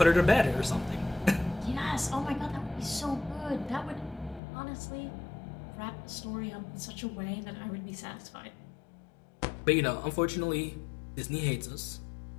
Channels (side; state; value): right; drops out; at 4.4 s